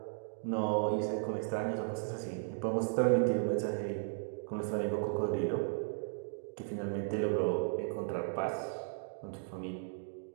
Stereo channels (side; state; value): left; silent; digital silence